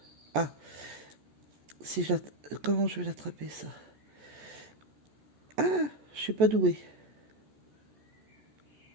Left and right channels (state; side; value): late; left; 14 ms